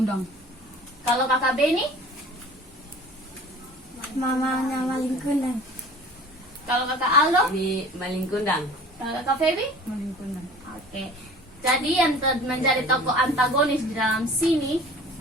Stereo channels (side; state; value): both; normal; correlation 0.44